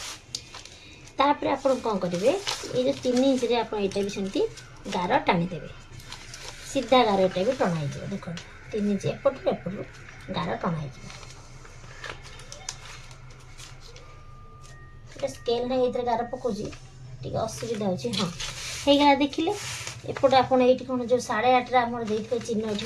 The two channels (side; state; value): both; identical; correlation 1.00